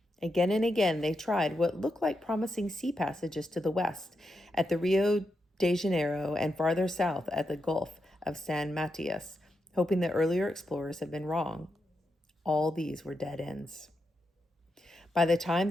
Again and again, they tried what looked like promising sea passages to the west at the Rio de Janeiro and farther south at the Gulf of San Matias, hoping that earlier explorers had been wrong. All these were dead ends. By the time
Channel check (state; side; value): normal; both; correlation 0.85